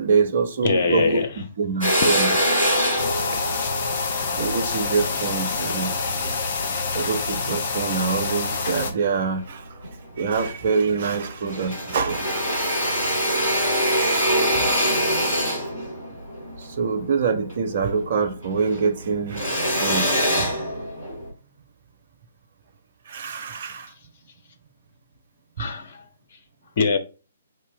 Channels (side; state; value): both; inverted; correlation -0.62